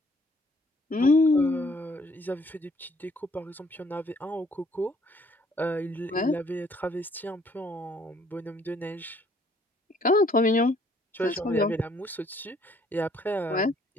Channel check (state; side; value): normal; both; correlation 0.63